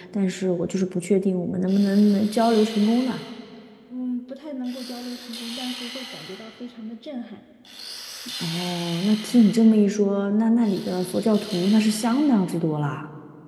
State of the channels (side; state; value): both; identical; correlation 1.00